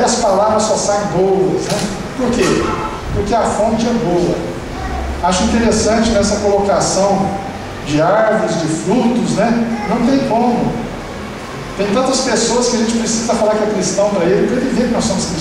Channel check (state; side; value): identical; both; correlation 1.00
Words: as palavras só saem boas, né? Por quê? Porque a fonte é boa. Acho interessante nessa colocação de árvores, de frutos, né? Não tem como. Tem tantas pessoas que a gente precisa falar que é cristão para ele ver que nós somos